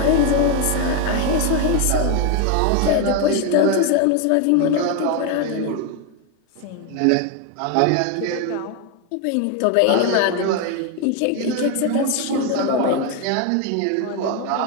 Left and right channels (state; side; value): different; both; correlation 0.01